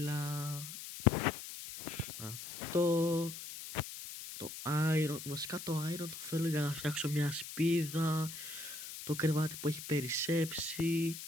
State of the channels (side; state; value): left; noise; hiss, 10 dB below the sound